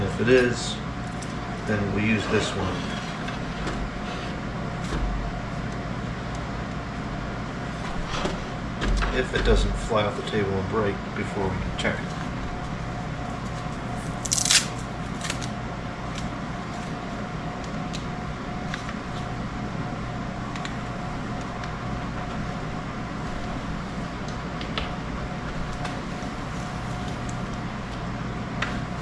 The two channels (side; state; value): both; identical; correlation 1.00